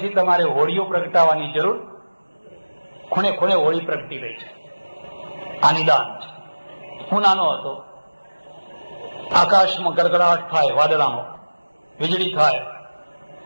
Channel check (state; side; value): inverted; both; correlation -1.00